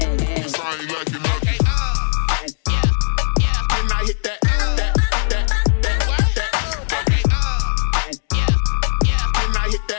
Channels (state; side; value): silent; right; digital silence